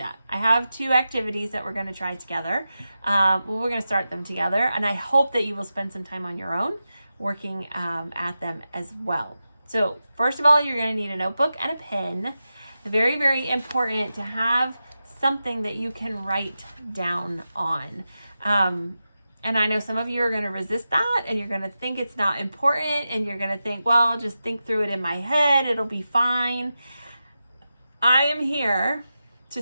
I have 2 activities that we're going to try together. We're going to start them together, and I hope that you will spend some time on your own working at them as well. So first of all, you're going to need a notebook and a pen. Very, very important to have something that you can write down on. And I know some of you are going to resist that, and you're going to think it's not important, and you're going to think, well, I'll just think through it in my head. It'll be fine. I am here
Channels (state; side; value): inverted; both; correlation -0.92